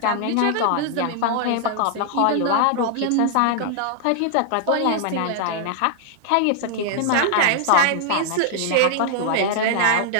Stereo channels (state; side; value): different; both; correlation -0.01